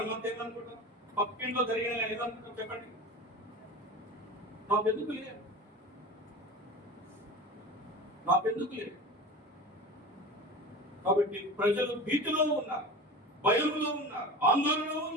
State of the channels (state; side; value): normal; both; correlation 0.32